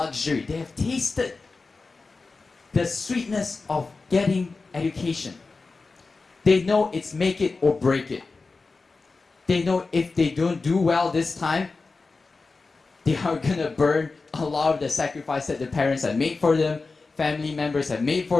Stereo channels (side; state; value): right; quieter; 4.0 dB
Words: they have tasted the sweetness of getting education. They know it's make it or break it. They know if they don't do well this time, they are gonna burn a lot of the sacrifice that the parents have made for them, family members have made